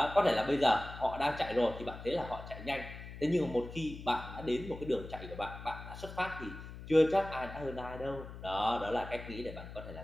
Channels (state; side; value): noise; left; hum, 12 dB below the sound